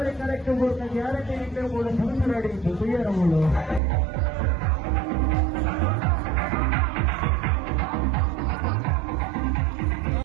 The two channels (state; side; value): drops out; left; at 3.8 s